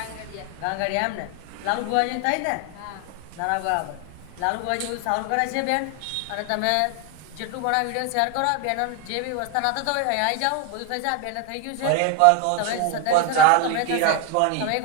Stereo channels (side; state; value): both; different; correlation 0.01